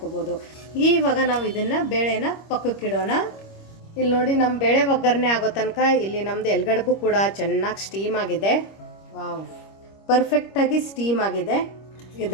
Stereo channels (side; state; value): right; late; 25 ms